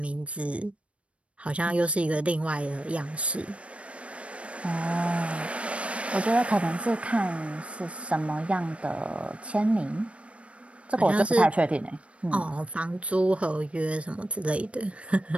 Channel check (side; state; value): left; late; 0.062 ms